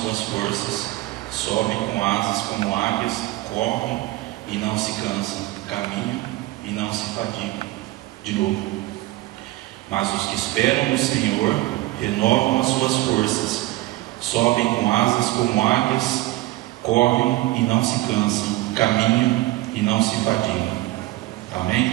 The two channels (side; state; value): left; quieter; 18.1 dB